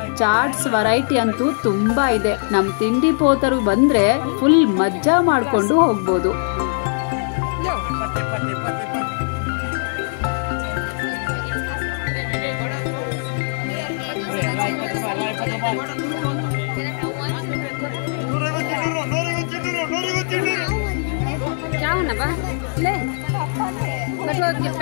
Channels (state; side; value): silent; right; digital silence